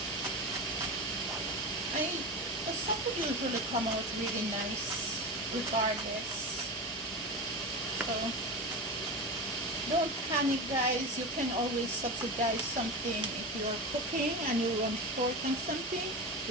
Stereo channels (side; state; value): both; normal; correlation 0.24